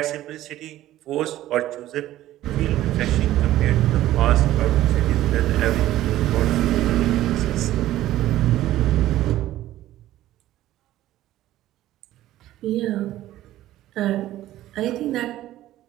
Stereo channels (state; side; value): quieter; left; 14.3 dB